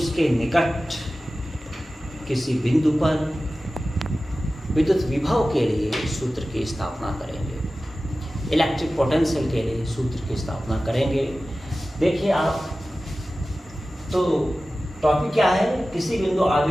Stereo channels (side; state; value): both; normal; correlation 0.95